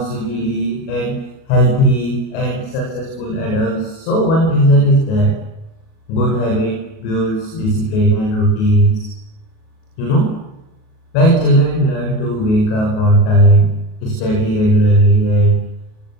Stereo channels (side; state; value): right; late; 37 ms